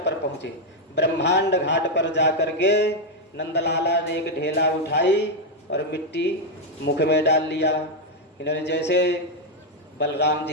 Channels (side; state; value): both; normal; correlation 0.02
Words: पर पहुँचे। ब्रह्मांड घाट पर जाकर के नंदलाला ने एक ढेला उठाई और मिट्टी मुख में डाल लिया। इन्होंने जैसे बलराम